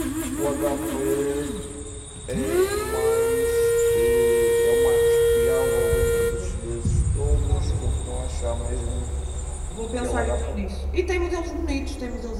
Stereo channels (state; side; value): identical; both; correlation 1.00